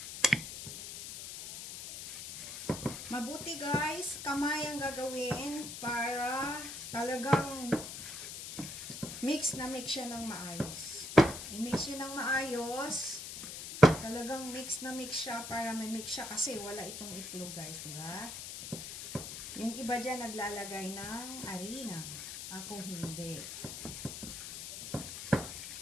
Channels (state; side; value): noise; left; hiss, 8 dB below the sound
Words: Mabuti guys. Kamay ang gagawin para talagang mix siya ng maayos. I-mix yun ng maayos. Talagang mix siya para may mix siya kasi wala itong itlog guys, diba? Yung iba dyan naglalagay ng harina. Ako hindi.